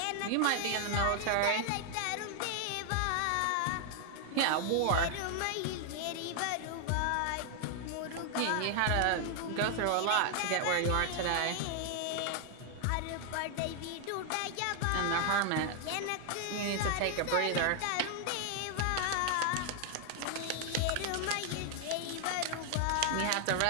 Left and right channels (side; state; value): both; different; correlation 0.00